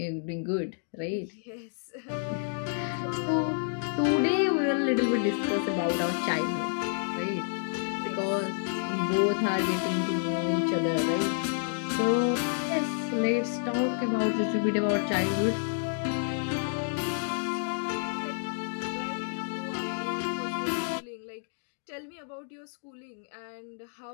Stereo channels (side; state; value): right; silent; digital silence